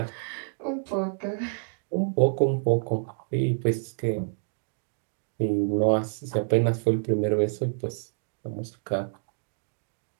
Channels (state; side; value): silent; left; 59 dB below the other